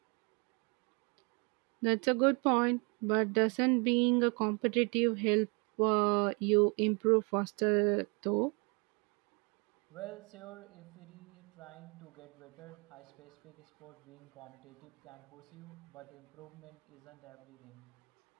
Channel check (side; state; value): left; quieter; 32.2 dB